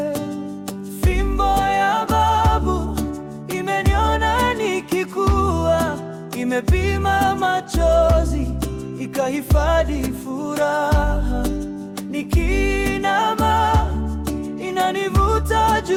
Fimbo ya babu imeniona nikikua, imepima machozi, ikahifadhi furaha. Nikinama inani kunivuta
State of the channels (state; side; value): identical; both; correlation 1.00